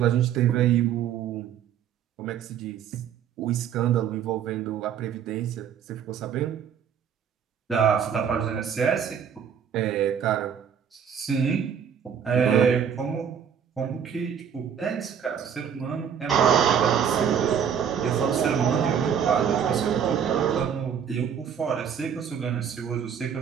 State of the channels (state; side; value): quieter; left; 8.1 dB